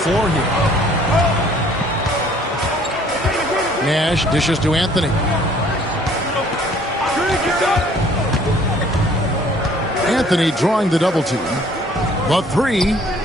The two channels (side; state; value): both; normal; correlation 0.57